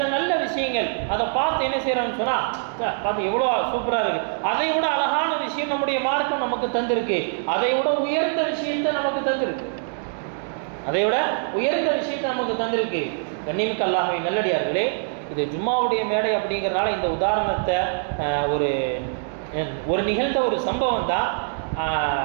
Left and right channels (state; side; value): silent; left; digital silence